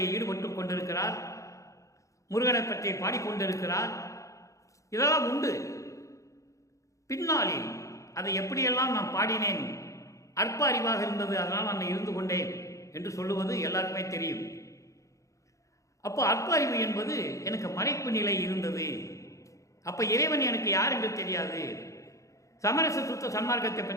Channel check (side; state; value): right; late; 0.15 ms